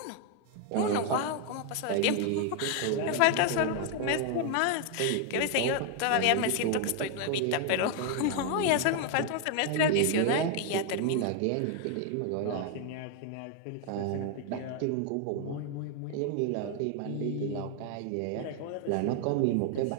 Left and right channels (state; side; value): different; both; correlation 0.01